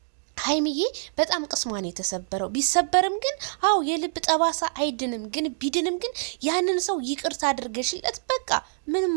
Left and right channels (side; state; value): left; silent; digital silence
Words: ሀይሚዬ በጣም ቅስሟን የተሰበረው ቢሰበርም ግን አው የልብ ጠባሳ አይድንም። ግን ቢድንም ግን ያንን ሰው ይቅርታ አድርገሽለት በቃ ምንም